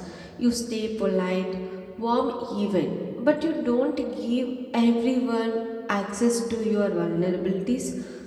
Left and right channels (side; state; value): both; identical; correlation 1.00